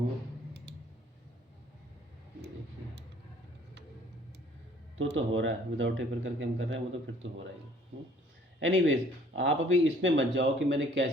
तो हो रहा है, विदाउट टेपर करके हम कर रहे हैं वो तो फिर तो हो रहा ही। एनीवेज, आप अभी इसमें मत जाओ कि मैंने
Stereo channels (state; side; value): normal; both; correlation 0.57